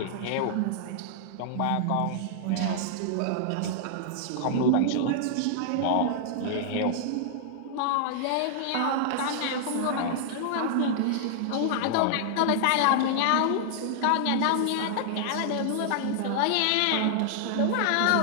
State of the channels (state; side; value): different; both; correlation -0.01